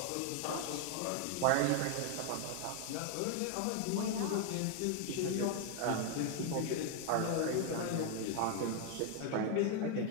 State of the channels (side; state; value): both; different; correlation 0.01